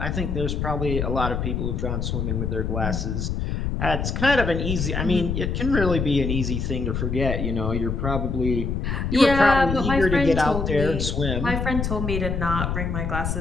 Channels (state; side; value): noise; left; rumble, 2 dB below the sound